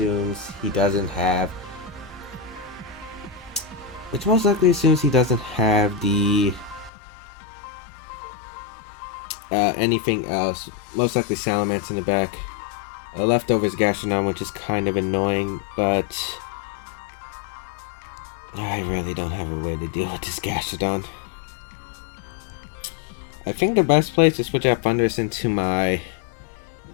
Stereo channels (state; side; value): drops out; right; at 6.9 s